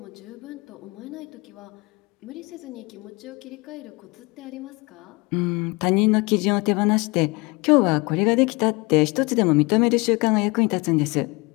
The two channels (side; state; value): right; quieter; 26.4 dB